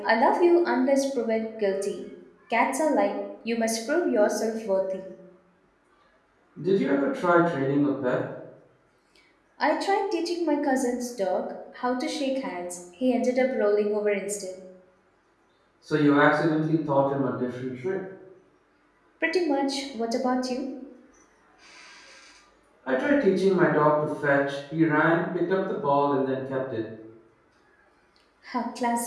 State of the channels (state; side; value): identical; both; correlation 1.00